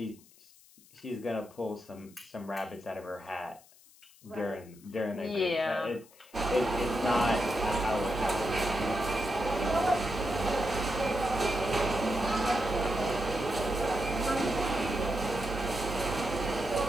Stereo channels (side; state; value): left; noise; hiss, 26 dB below the sound